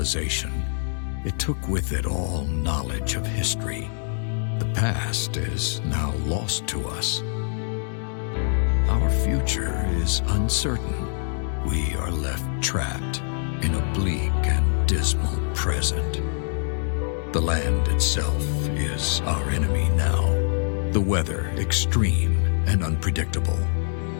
it took with it all knowledge of history. The past is now lost to us. Our future is uncertain. We are left trapped in a bleak and dismal present. The land itself is our enemy now. The weather extreme and unpredictable.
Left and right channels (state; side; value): silent; right; 62 dB below the other